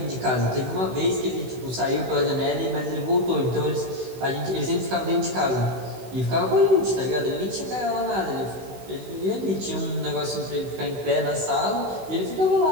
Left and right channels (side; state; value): left; late; 16 ms